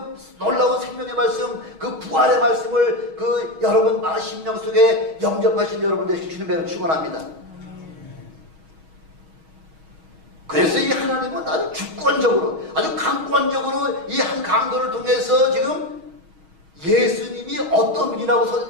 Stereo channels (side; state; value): left; late; 6.3 ms